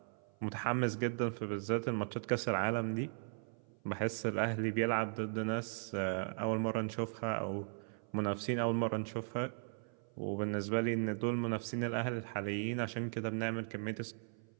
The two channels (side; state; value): left; silent; 53 dB below the other